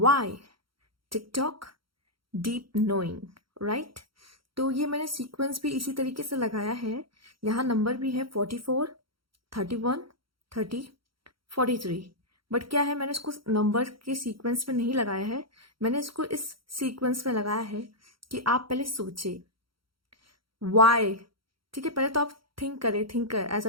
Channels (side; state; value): left; late; 0.74 ms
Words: TikTok, deep knowing, right. तो ये मैंने सीक्वेंस भी इसी तरीके से लगाया है। यहाँ नंबर भी है 44, 31, 30, 43। बट क्या है, मैंने इसको नंबर के सीक्वेंस में नहीं लगाया है। मैंने इसको इस सीक्वेंस में लगाया है कि आप पहले सोचे वाई। ठीक है, पहले तो आप थिंक करें, थिंकर एज